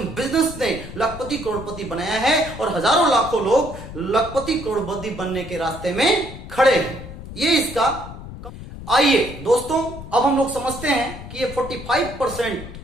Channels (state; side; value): noise; left; rumble, 12 dB below the sound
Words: बिजनेस ने लखपति करोड़पति बनाया है और हजारों लाखों लोग लखपति करोड़पति बनने के रास्ते में खड़े हैं। ये इसका। आइए दोस्तों, अब हम लोग समझते हैं कि ये 45%